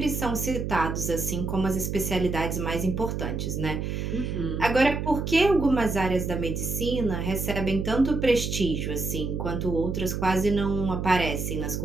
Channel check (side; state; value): right; noise; hum, 3 dB below the sound